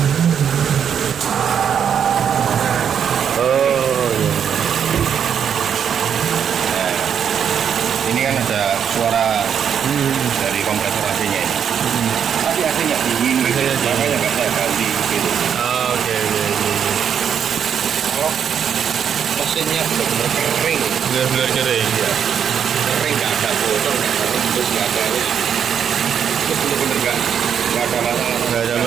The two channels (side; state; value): left; quieter; 8.0 dB